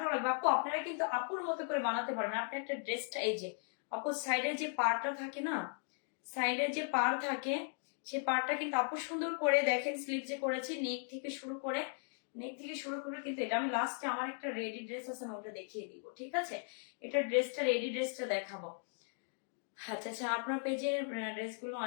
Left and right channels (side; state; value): right; silent; 53 dB below the other